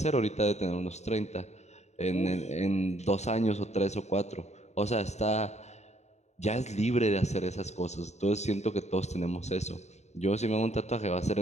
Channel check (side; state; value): right; late; 0.32 ms